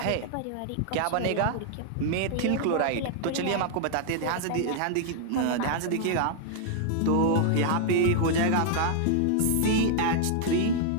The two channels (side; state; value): both; different; correlation -0.01